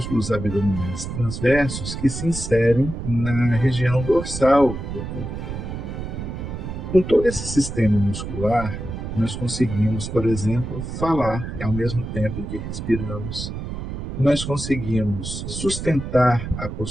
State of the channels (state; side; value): noise; right; rumble, 6 dB below the sound